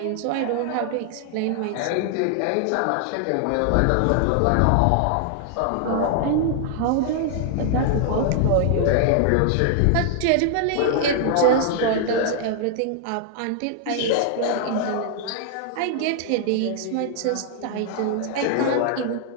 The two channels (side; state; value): both; different; correlation 0.00